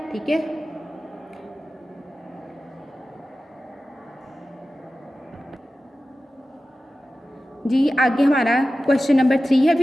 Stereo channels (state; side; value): normal; both; correlation 0.94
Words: ठीक है, जी आगे हमारा क्वेश्चन नंबर 3 है